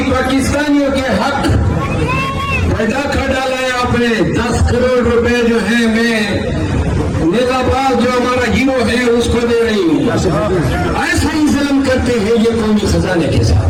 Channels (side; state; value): both; identical; correlation 1.00